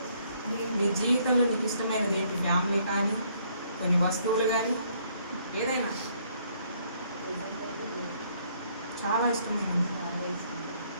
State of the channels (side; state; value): both; inverted; correlation -0.66